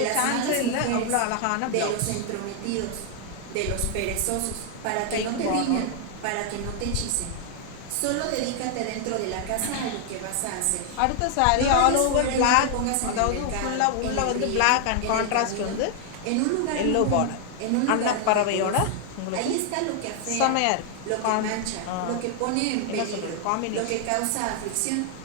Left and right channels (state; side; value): different; both; correlation 0.00